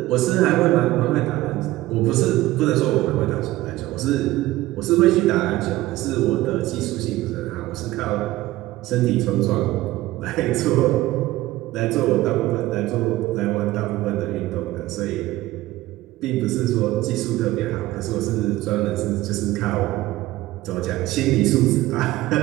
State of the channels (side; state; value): left; quieter; 16.9 dB